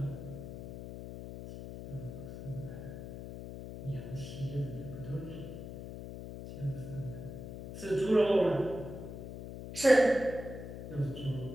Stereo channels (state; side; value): noise; left; hum, 9 dB below the sound